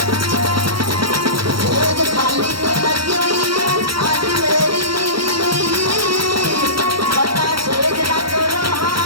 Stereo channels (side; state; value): left; late; 0.74 ms